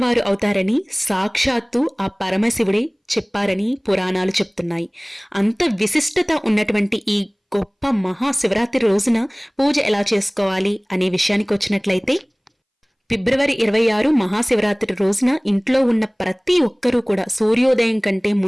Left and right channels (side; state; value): both; identical; correlation 1.00